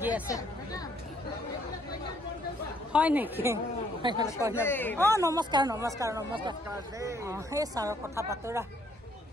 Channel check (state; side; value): normal; both; correlation 0.67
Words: আছে হয় নেকি নমস্কাৰ নমস্কাৰ নমস্কাৰ সেই ছাৰৰ কথা পাতোৰা